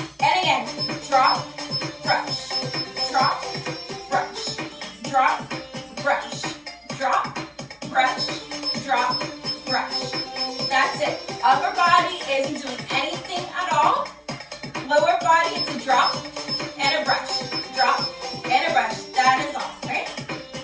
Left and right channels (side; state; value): both; identical; correlation 1.00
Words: And again, drop, brush, drop, brush, drop, brush, drop, brush, drop, brush. That's it. Upper body isn't doing anything at all. Lower body is a drop and a brush. Drop and a brush. That is all, right?